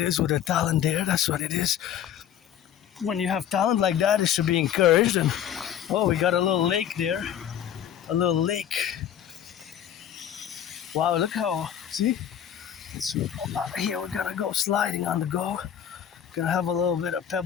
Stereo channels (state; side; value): quieter; right; 9.7 dB